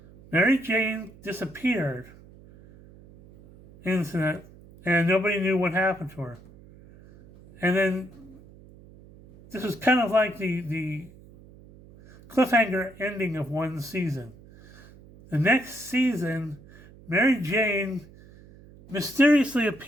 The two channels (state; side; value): noise; right; hum, 22 dB below the sound